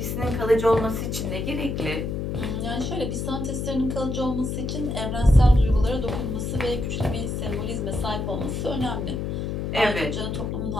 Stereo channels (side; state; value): left; noise; hum, 2 dB below the sound